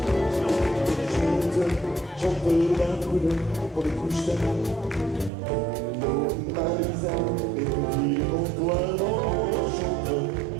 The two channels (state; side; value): drops out; left; at 5.3 s